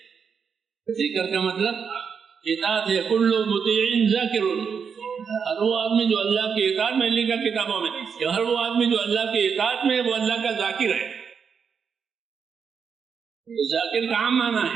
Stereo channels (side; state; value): left; quieter; 6.4 dB